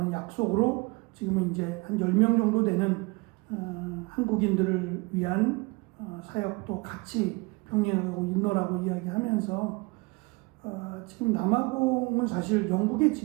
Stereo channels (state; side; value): quieter; left; 26.7 dB